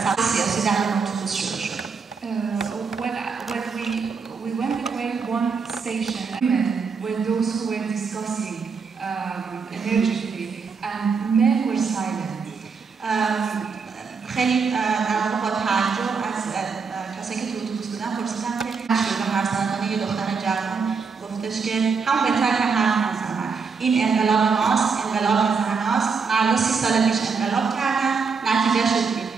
سمت سیاسی در اون اتوبوس شروع شد. We went away one station, women were those who were discussing energetically, and men were silent. خیلی در واقع با تعجب از کسایی که تو اتوبوس بودن پرسیدم که شروع حرف زدن یه دختر جوان گفتش که هم بهتر که حرف نزنن. این انقلاب ماست، انقلاب زناست. مردا 30 سال پیش انقلاب کردن، نتیجه شد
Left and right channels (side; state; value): left; quieter; 5.3 dB